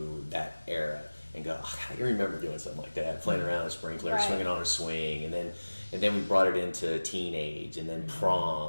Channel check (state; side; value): inverted; both; correlation -1.00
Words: that era and go, I remember doing something like that, playing around a sprinkler, swinging on a swing, and then we brought it into teenage, and then